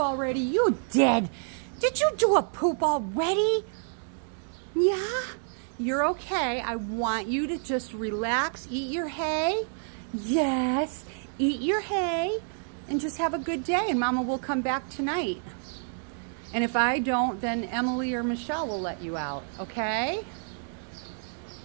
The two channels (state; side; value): silent; left; 59 dB below the other